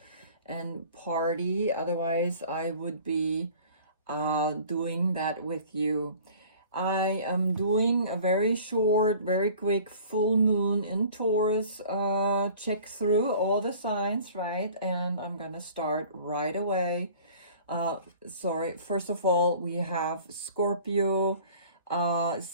and party. Otherwise, I would be doing that with you. I am doing a very short, very quick full moon in Taurus check through all the signs, right? And I'm gonna start right away. First of all, we have Scorpio.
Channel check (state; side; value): inverted; both; correlation -0.48